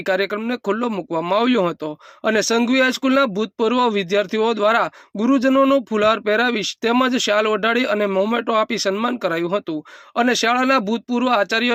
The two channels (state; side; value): identical; both; correlation 1.00